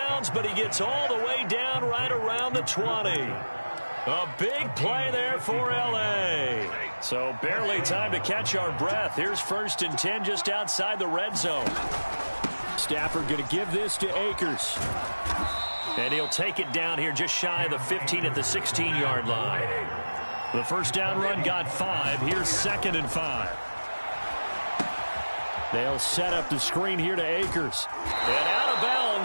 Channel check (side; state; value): both; inverted; correlation -1.00